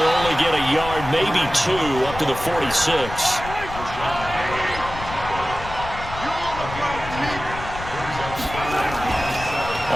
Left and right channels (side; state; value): left; noise; rumble, 11 dB below the sound